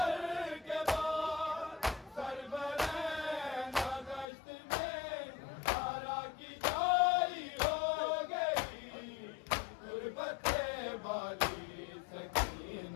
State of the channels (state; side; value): drops out; right; at 4.2 s